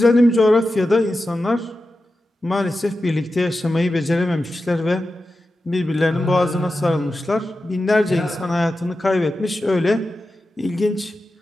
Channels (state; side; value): normal; both; correlation 0.92